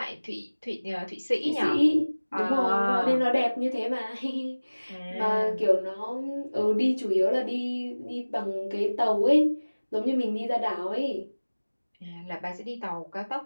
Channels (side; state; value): both; inverted; correlation -1.00